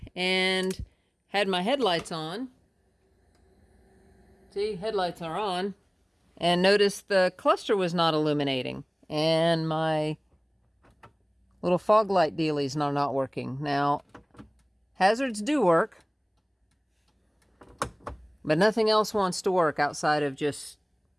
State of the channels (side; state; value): both; identical; correlation 1.00